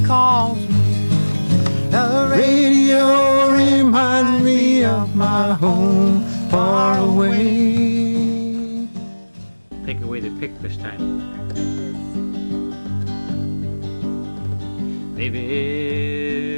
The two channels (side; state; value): both; inverted; correlation -1.00